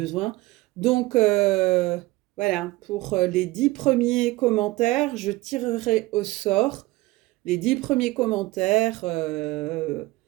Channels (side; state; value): left; quieter; 19.5 dB